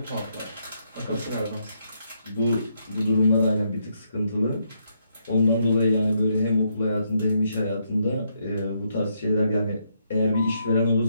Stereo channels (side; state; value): both; inverted; correlation -0.77